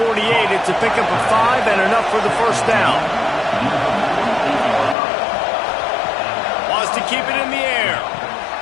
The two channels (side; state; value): right; drops out; at 5.0 s